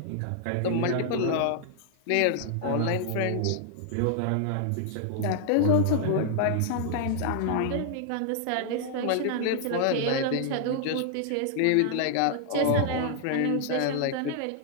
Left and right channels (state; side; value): different; both; correlation -0.01